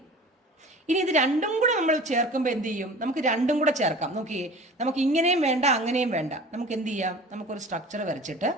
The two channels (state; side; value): normal; both; correlation 0.41